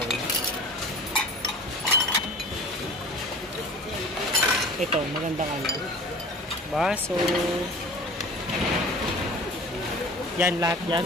Ito, magandang baso. Yan, lahat yan.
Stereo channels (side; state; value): both; normal; correlation 0.41